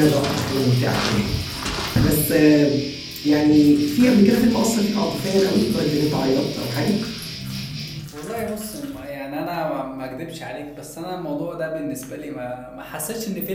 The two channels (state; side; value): identical; both; correlation 1.00